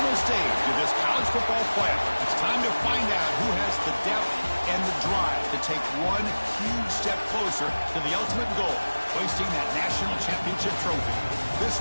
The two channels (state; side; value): inverted; both; correlation -1.00